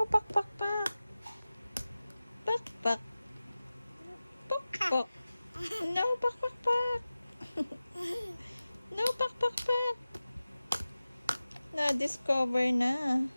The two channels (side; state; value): both; inverted; correlation -0.96